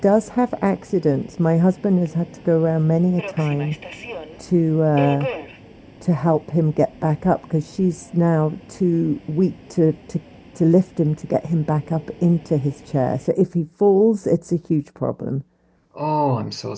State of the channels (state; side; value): identical; both; correlation 1.00